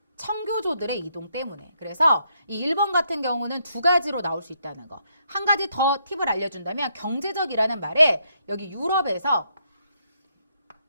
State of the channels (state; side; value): inverted; both; correlation -0.76